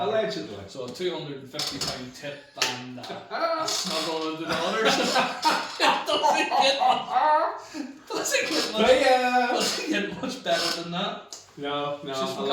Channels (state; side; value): identical; both; correlation 1.00